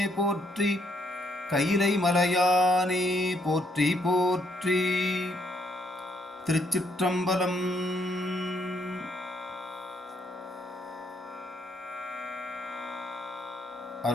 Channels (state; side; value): normal; both; correlation 0.72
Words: போற்றி, கைலை மலையானே போற்றி போற்றி. திருச்சிற்றம்பலம்.